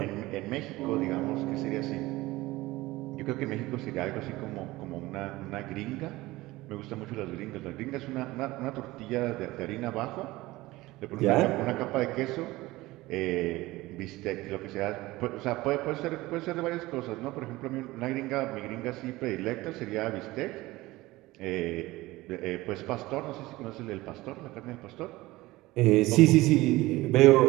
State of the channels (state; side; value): quieter; left; 19.1 dB